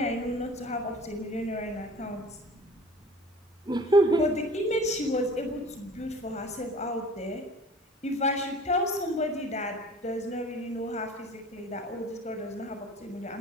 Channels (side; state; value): both; normal; correlation 0.45